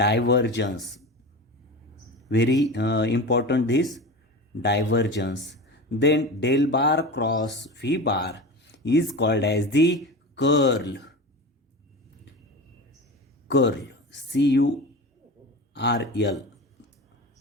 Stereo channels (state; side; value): normal; both; correlation 0.29